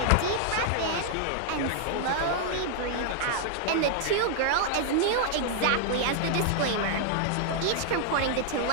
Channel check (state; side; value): different; both; correlation 0.00